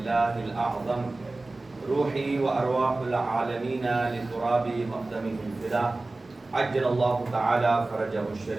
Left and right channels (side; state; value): left; quieter; 3.1 dB